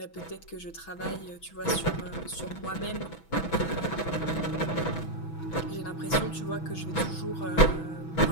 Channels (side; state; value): right; late; 6.1 ms